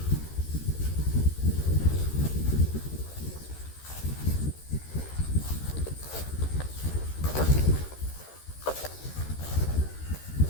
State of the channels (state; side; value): late; right; 13 ms